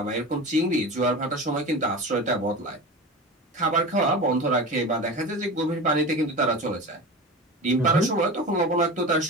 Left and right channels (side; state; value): both; normal; correlation 0.30